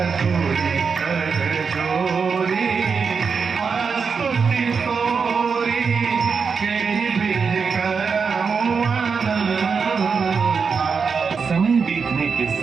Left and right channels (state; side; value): quieter; left; 5.6 dB